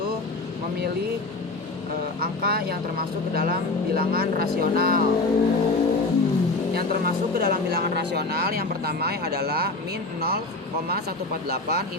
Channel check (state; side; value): quieter; right; 3.2 dB